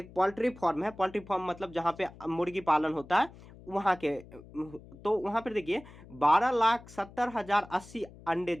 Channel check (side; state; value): left; noise; hum, 20 dB below the sound